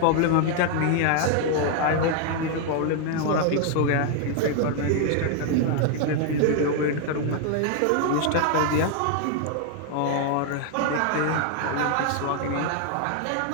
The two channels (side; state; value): both; different; correlation 0.00